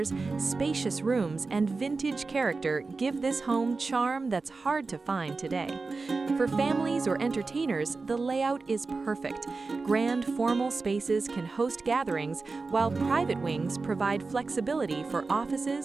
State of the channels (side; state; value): left; quieter; 4.0 dB